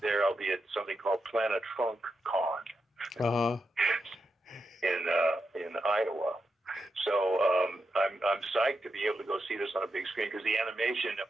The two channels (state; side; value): normal; both; correlation 0.86